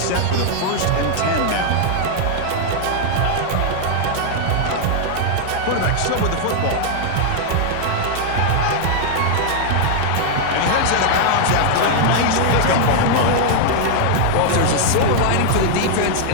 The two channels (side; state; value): both; different; correlation 0.00